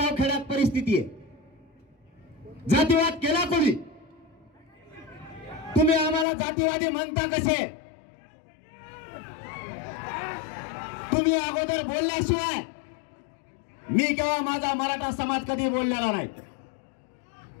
खेड्यात परिस्थिती आहे. जातीवाद केला कोणी? तुम्ही आम्हाला जातीवादी म्हणता कसे? तुम्ही अगोदर बोलल्याशिवाय मी किंवा माझा मराठा समाज कधी बोललेला नाही.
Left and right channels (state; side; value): drops out; right; at 6.2 s